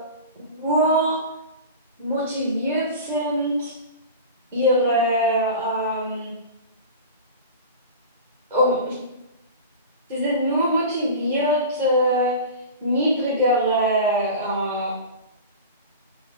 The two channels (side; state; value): both; inverted; correlation -0.33